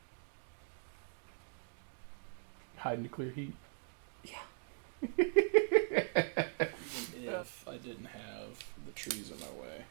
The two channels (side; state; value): left; silent; 51 dB below the other